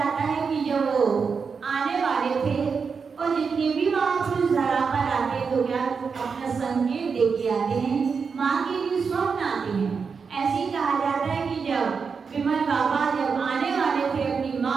है कि जब वो आने वाले थे और जितने भी महापुरुष धरा पर आते तो क्या अपना संकेत दे के आते हैं, माँ के लिए स्वप्न आते हैं। ऐसे ही कहा जाता है कि जब विमल बाबा जब आने वाले थे अपनी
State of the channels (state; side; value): quieter; left; 5.5 dB